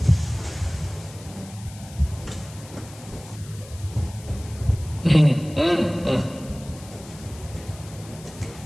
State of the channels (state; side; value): noise; left; hiss, 19 dB below the sound